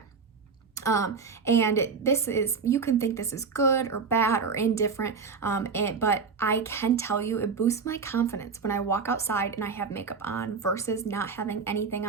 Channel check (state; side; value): quieter; left; 5.3 dB